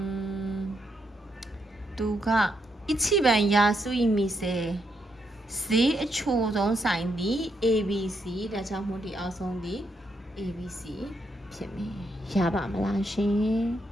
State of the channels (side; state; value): both; normal; correlation 0.79